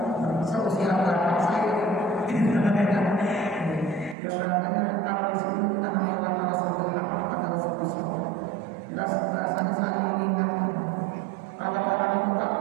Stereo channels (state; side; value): drops out; left; at 4.2 s